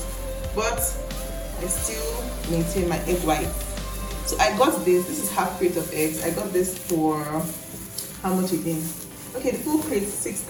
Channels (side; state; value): both; identical; correlation 1.00